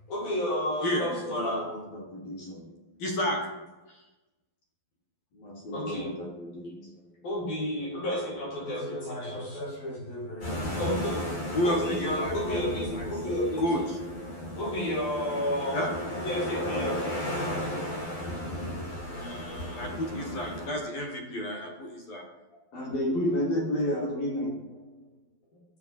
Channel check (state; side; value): late; right; 12 ms